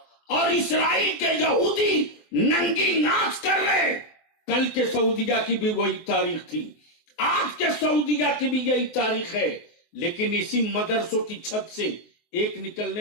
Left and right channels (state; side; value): late; right; 23 ms